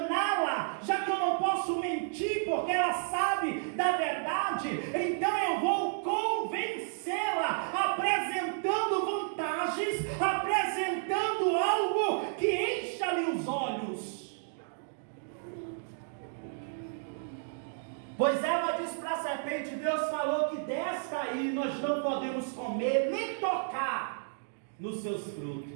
já que eu não posso mentir porque ela sabe da verdade, então eu vou convencê-la, apresentando vantagens, apresentando algo que encha-lhe os olhos. Pois Eva disse para a serpente: Deus falou que desta aí nós não podemos comer, nem tocar nos seus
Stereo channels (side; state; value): left; silent; digital silence